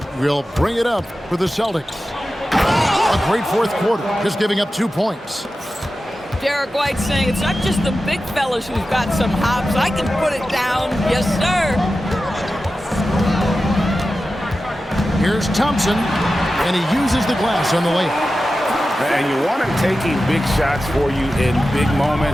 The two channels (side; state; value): both; normal; correlation 0.93